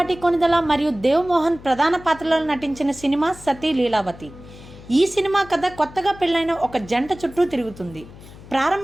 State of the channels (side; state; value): left; noise; hum, 19 dB below the sound